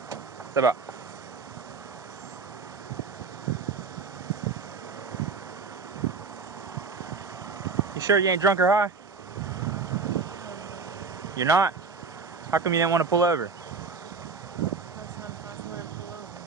Step up. You sure you ain't drunk or high? You're not? How come you didn't want to pull over?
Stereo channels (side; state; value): left; quieter; 4.6 dB